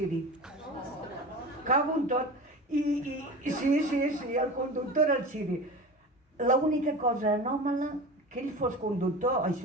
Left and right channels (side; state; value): both; normal; correlation 0.32